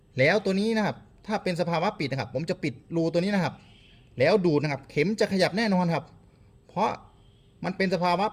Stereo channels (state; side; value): identical; both; correlation 1.00